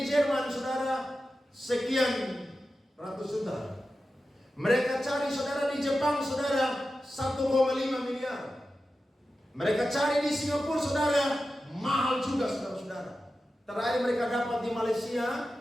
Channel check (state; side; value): normal; both; correlation 0.92